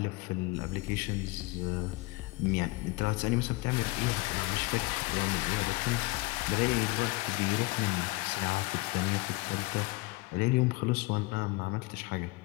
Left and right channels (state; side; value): quieter; right; 23.5 dB